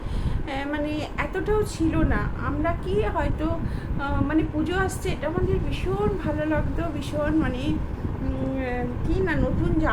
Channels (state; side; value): identical; both; correlation 1.00